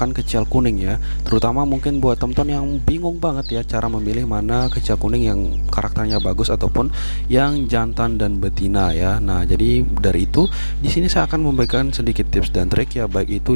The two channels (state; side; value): inverted; both; correlation -1.00